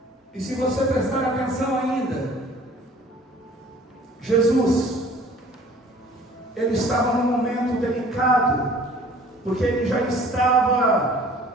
E se você prestar atenção ainda, Jesus, ele estava num momento delicado, porque ele já estava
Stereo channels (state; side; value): normal; both; correlation 0.51